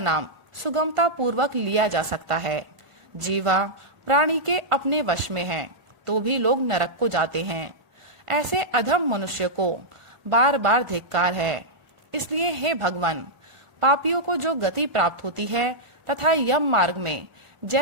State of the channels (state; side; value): late; left; 1.4 ms